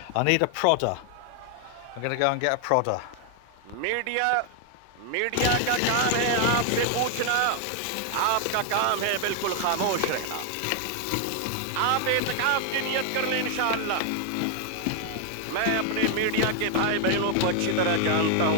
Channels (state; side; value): different; both; correlation 0.00